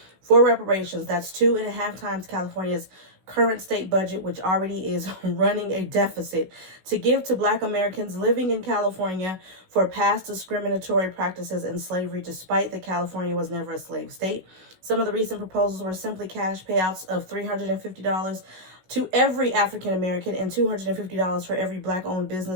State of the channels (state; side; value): late; left; 16 ms